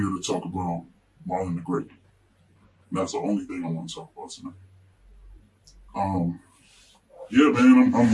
to talk about Marlon the Great. And that's the only thing I want to talk about tonight. Yeah,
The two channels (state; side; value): identical; both; correlation 1.00